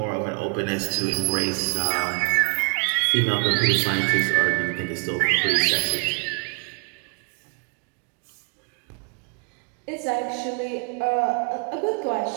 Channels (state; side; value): quieter; left; 35.6 dB